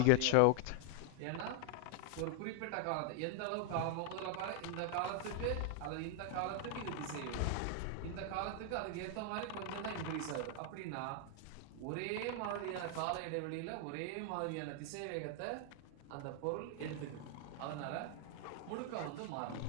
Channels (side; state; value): both; different; correlation 0.00